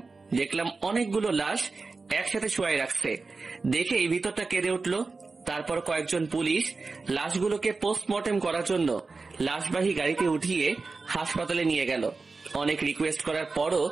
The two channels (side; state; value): left; quieter; 4.0 dB